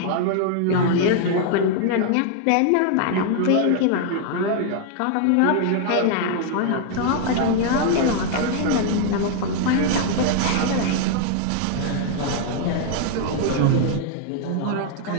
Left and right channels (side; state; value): both; different; correlation 0.00